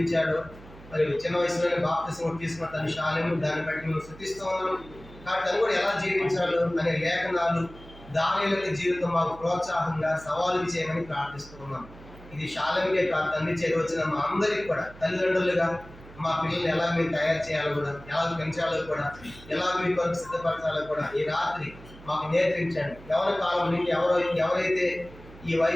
మరి చిన్న వయసులోనే బాప్తిసం తీసుకున్న తన షాలేము, దాన్ని బట్టి మేము స్తుతిస్తూ ఉన్నాం. కాబట్టి తను కూడా ఎలా జీవించాడు అనే లేఖనాలు దానియేలు జీవితం మాకు ప్రోత్సాహంగా సవాలు చేయమని ప్రార్థిస్తూ ఉన్నాం. ఇది షాలేముకే కాదు, తండ్రి చేరువచ్చిన మా అందరికి కూడా తల్లిదండ్రులుగా మా పిల్లల్ని ఎలా మీరు తయారు చేయాలో కూడా, ఎలా పెంచాలో కూడా, ఎలా మీ కొరకు సిద్ధపరచాలో కూడా ఈ రాత్రి మాకు నేర్పించండి. యవ్వన కాలం నుండి ఎవరైతే ఈ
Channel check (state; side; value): noise; right; hum, 19 dB below the sound